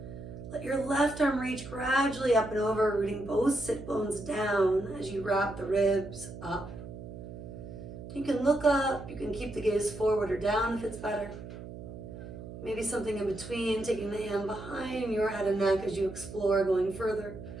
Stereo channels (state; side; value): noise; right; hum, 12 dB below the sound